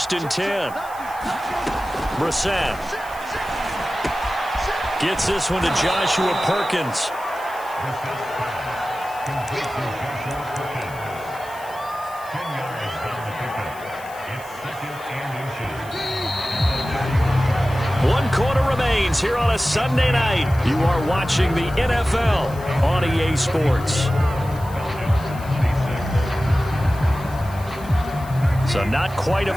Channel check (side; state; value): left; noise; hiss, 21 dB below the sound